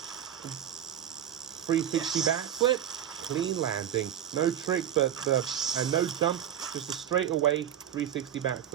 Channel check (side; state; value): left; quieter; 10.3 dB